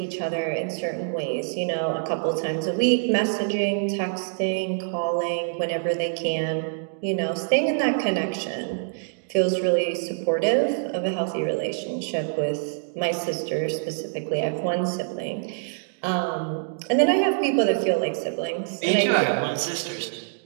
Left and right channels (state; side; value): silent; left; digital silence